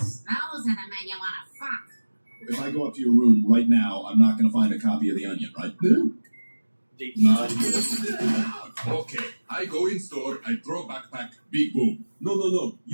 those are the men you want to fuck. If I go up to your room right now, I'm not going to find a copy of The Onion, right? Okay, I go in store, I throw backpack, big boom. No,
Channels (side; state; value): both; inverted; correlation -1.00